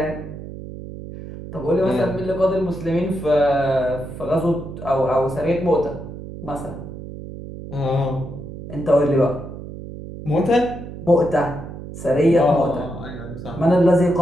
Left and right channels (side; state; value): right; noise; hum, 11 dB below the sound